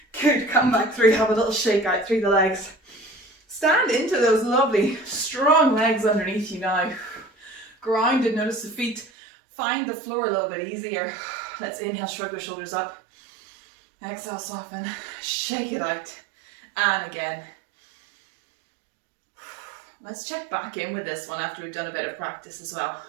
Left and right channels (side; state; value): left; drops out; at 9.1 s